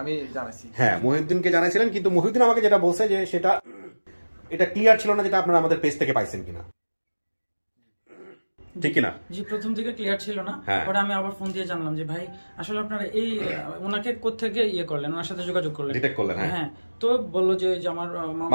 আমি জানাইছি, হ্যাঁ, মহিউদ্দিনকে জানাইছিলেন, কিন্তু মহিউদ্দিন আমাকে যেটা বলছে যে সেটা এটা ক্লিয়ার ছিল না, যেটা আপনারা আমাদের পেজ থেকে পাইছেন কিনা, ঠিক কিনা? জি, প্রথম থেকে ক্লিয়ার ছিল না। পরে আমি আবার ফোন দিয়ে জানলাম যে ভাই আসলে আপনারা এই ওনাকে কোত্থেকে ইয়ে করলেন, ওনার সাথে যোগাযোগ করলেন, ডিটেক্ট করলেন? হ্যাঁ। তো বললো যে আমার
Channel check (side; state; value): both; inverted; correlation -1.00